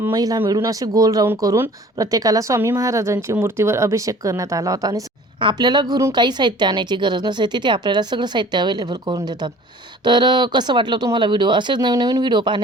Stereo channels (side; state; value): both; normal; correlation 0.49